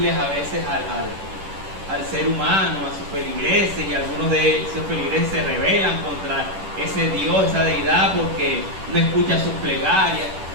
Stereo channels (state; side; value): late; left; 10 ms